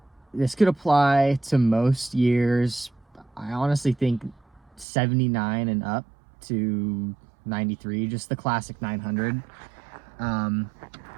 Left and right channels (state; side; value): drops out; left; at 4.9 s